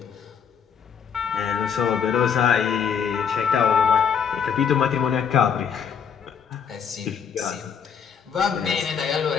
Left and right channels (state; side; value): quieter; right; 7.2 dB